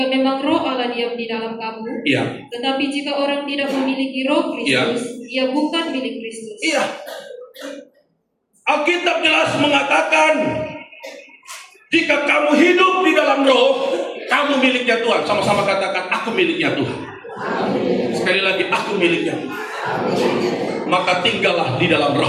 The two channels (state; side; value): identical; both; correlation 1.00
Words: memang roh Allah diam di dalam kamu, Iya. tetapi jika orang tidak memiliki roh Kristus, ia bukan milik Kristus. Iya. Alkitab jelas mengatakan, jika kamu hidup di dalam roh, kamu miliknya Tuhan. Sama-sama katakan, aku miliknya Tuhan. Sekali lagi, aku miliknya Tuhan. Maka tinggallah di dalam